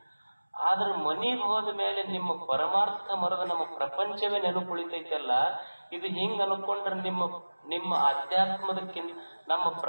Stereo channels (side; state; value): both; inverted; correlation -1.00